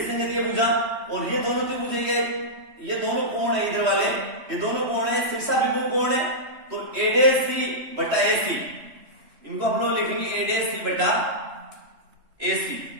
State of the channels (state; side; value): late; left; 3.2 ms